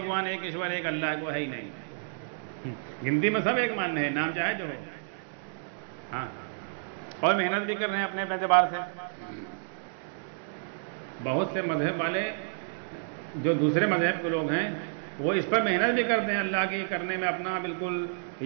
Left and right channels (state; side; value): silent; left; digital silence